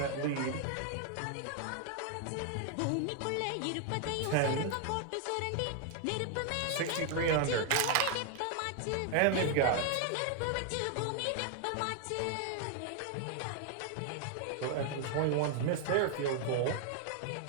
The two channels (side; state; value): both; different; correlation 0.00